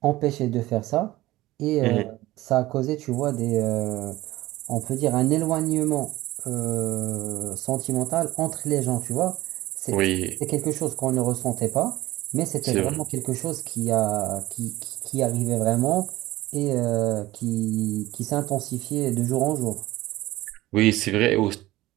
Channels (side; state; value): left; quieter; 17.4 dB